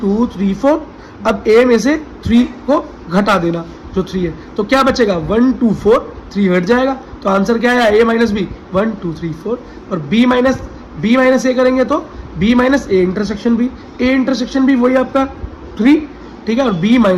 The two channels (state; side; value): identical; both; correlation 1.00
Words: 2 3 4। अब a में से 3 को घटा देना, जो 3 है, तो क्या बचेगा? 1 2 4, 3 हट जाएगा। तो आंसर क्या है? a minus B 1 2 3 4। और b माइनस a करेंगे तो b minus a intersection b वही आपका 3, ठीक है। और b